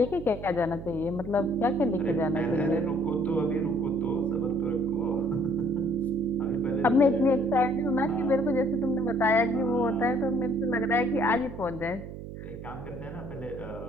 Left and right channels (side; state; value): right; noise; hum, 11 dB below the sound